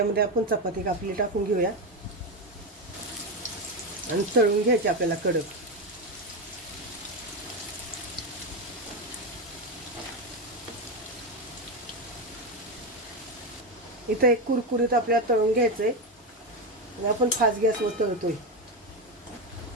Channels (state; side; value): normal; both; correlation 0.12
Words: आपण चपाती कापली टाकून घेऊया आणि तळून घ्यायची आपल्याला कडक. इथं एक कुरकुरीत आपल्याला तळून घ्यायचंय आणि आपण फास्ट गॅसवर तळतोय.